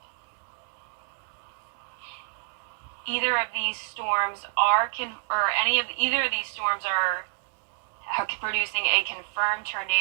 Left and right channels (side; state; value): left; silent; digital silence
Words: of these storms either of these storms are producing a confirmed